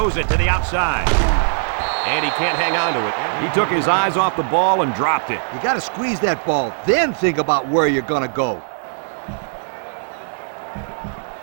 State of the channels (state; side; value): silent; left; 62 dB below the other